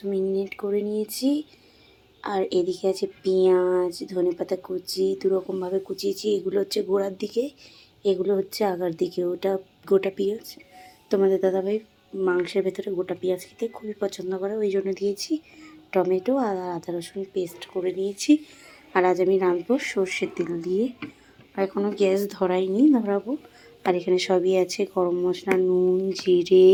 ম্যারিনেট করে নিয়েছি। আর এদিকে আছে পেঁয়াজ, ধনেপাতা কুচি, দুরকমভাবে কুচিয়েছি। এগুলো হচ্ছে গোড়ার দিকে, এগুলো হচ্ছে আগার দিকে। ওটা গোটা পেঁয়াজ। তোমাদের দাদাভাই মাংসের ভেতরে গোটা পেঁয়াজ খেতে খুবই পছন্দ করে, ওই জন্য দিয়েছি। টমেটো আর আদা রসুন পেস্ট করে নিয়েছি। আর আজ আমি রাঁধবো সর্ষের তেল দিয়ে। আর এখনও গ্যাস ধরাইনি, ধরাবো। আর এখানে সবই আছে, গরম মশলা, নুন, জিরে,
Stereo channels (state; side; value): identical; both; correlation 1.00